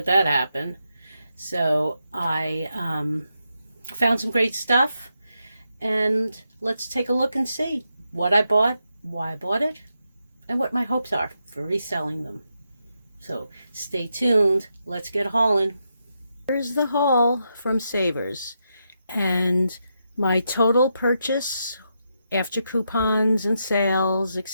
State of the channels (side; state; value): both; inverted; correlation -0.84